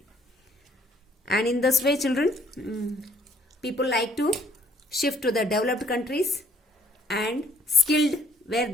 And in this way, children, people like to shift to the developed countries and skilled, where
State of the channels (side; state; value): both; normal; correlation 0.63